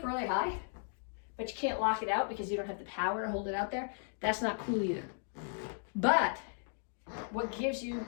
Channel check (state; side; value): silent; right; digital silence